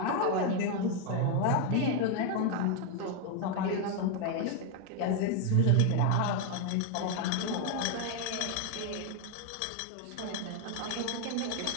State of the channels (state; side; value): different; both; correlation 0.01